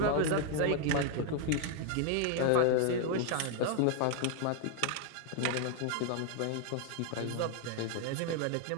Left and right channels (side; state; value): both; different; correlation 0.00